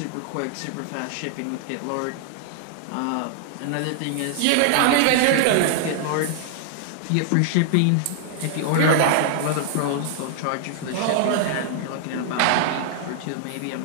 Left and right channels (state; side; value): different; both; correlation 0.00